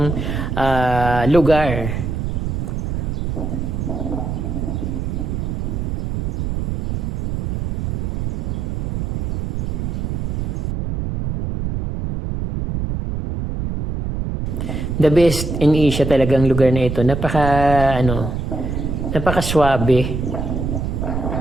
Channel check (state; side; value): noise; right; rumble, 2 dB below the sound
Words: lugar. The best in Asia talagang lugar na ito. Napaka-swabe.